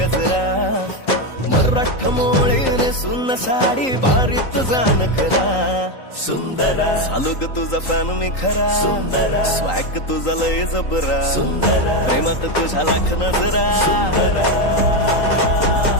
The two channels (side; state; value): right; late; 3.8 ms